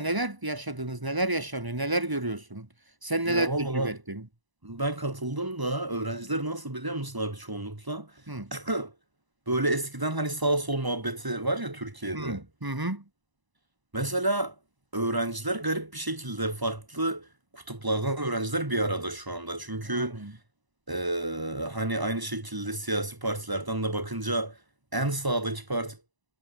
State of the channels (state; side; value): late; left; 1.0 ms